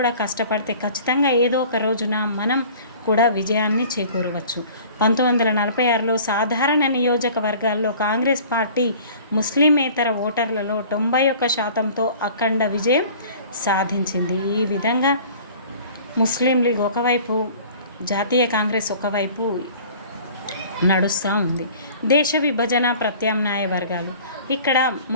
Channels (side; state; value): both; inverted; correlation -0.47